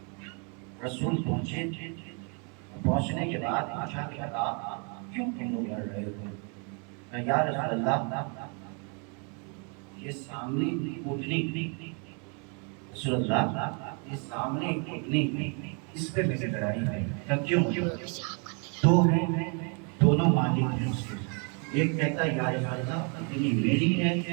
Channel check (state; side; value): quieter; left; 37.3 dB